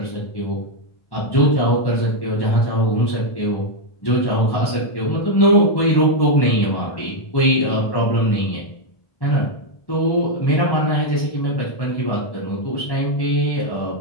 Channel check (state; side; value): late; right; 1.1 ms